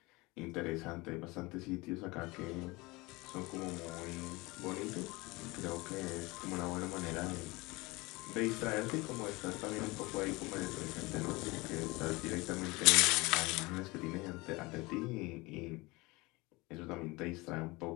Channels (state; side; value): quieter; right; 23.4 dB